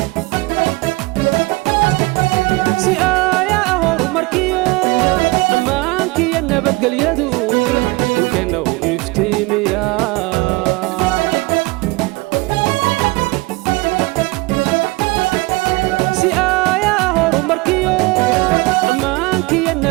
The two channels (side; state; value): left; quieter; 23.8 dB